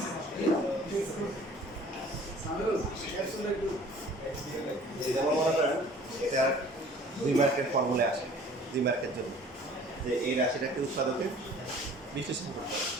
যেমন মনে করেন এটা 2 মার্কের ফর্মুলা আসে 2 মার্কের জন্য যে এই রাশিটাকে উৎপাদকে বিশ্লেষণ করতে হবে।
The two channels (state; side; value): normal; both; correlation 0.50